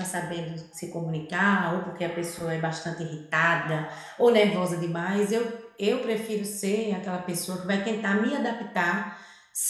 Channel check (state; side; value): identical; both; correlation 1.00